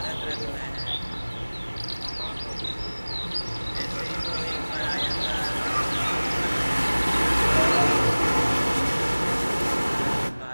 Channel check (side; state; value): both; inverted; correlation -1.00